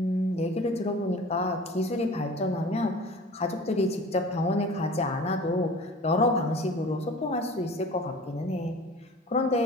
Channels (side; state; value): both; normal; correlation 0.42